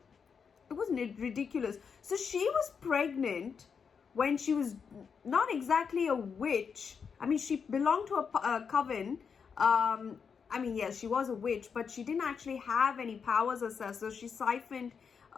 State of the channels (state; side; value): quieter; right; 6.2 dB